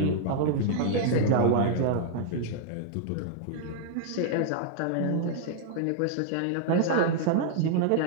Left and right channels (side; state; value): both; different; correlation -0.01